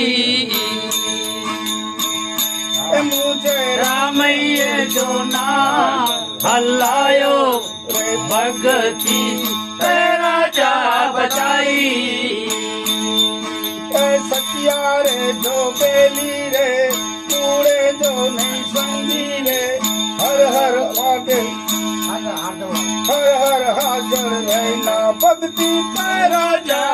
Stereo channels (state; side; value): identical; both; correlation 1.00